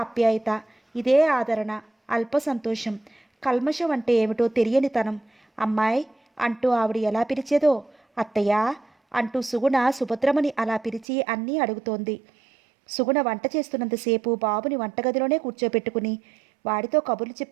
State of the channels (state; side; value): drops out; left; at 11.1 s